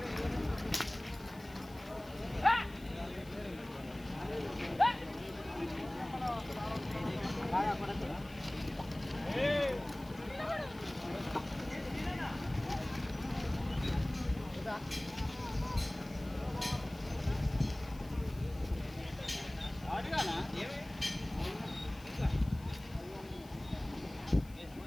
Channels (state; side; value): noise; left; hiss, 23 dB below the sound